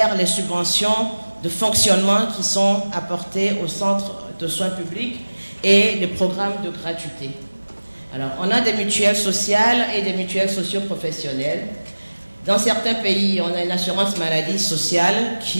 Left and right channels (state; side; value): inverted; both; correlation -1.00